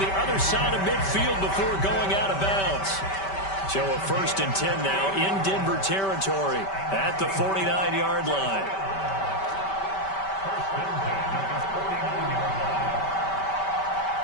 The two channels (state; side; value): late; right; 5.2 ms